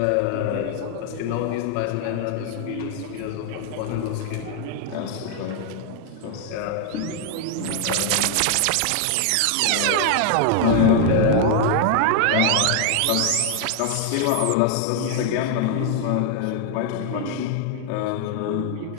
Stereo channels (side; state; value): both; different; correlation 0.00